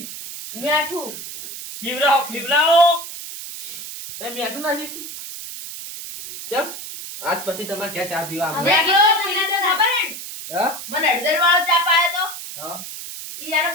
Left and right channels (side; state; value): right; noise; hiss, 10 dB below the sound